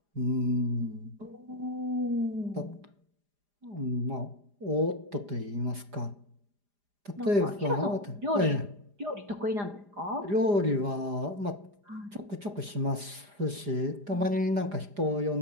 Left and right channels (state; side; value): late; left; 4.9 ms